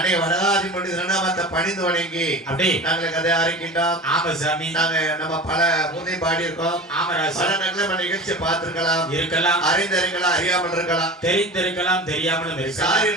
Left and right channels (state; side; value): normal; both; correlation 0.34